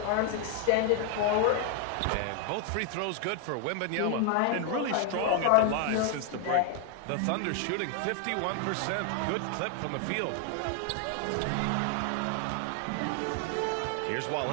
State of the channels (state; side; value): different; both; correlation 0.00